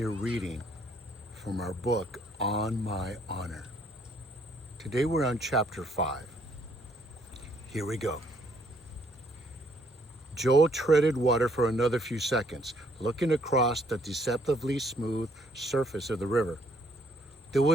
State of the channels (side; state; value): both; normal; correlation 0.67